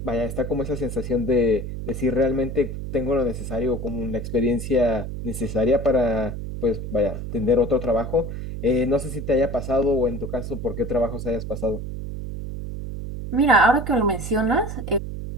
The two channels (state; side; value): noise; right; hum, 6 dB below the sound